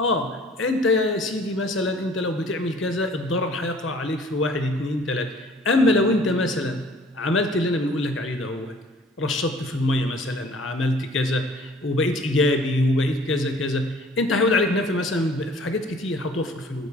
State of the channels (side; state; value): both; normal; correlation 0.53